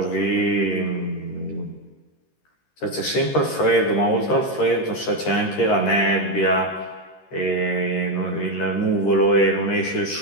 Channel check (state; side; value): late; right; 13 ms